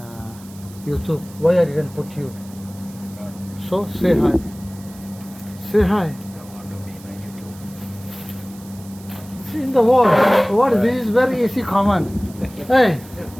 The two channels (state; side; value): noise; right; hiss, 22 dB below the sound